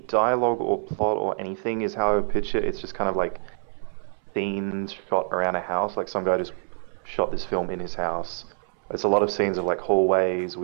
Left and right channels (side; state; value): left; silent; 61 dB below the other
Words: or plot or anything is how I would pitch it. It's just kind of like scenes shot around a house. Like some guy just shot this film in his house. It's a lot of scenes of like hallways